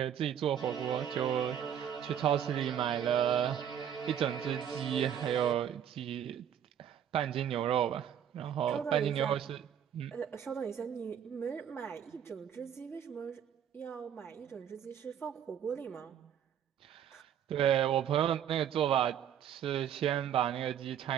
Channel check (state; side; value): quieter; left; 9.3 dB